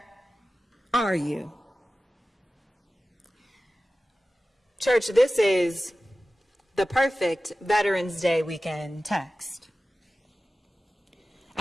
are you? Church, this is the perfect Veterans Day weekend text.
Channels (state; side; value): normal; both; correlation 0.95